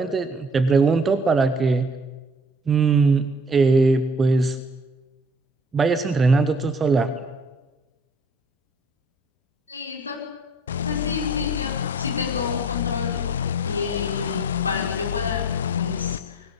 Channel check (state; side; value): normal; both; correlation 0.51